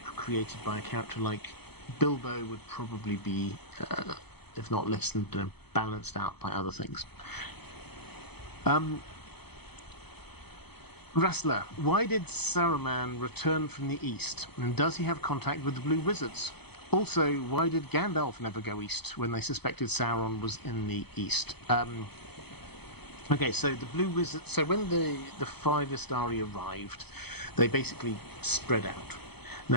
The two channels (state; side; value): late; right; 0.98 ms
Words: created by a character like Bilbo would probably be, if not lessened, balanced out by other things. Rassler, why did Saruman return from the east? And does he have contact with the Blue Wizards? Also, why did Gandalf never go east when they suspected Sauron was in the east? Okay, so the Blue Wizards... So when the five Istari arrived, they basically spread out.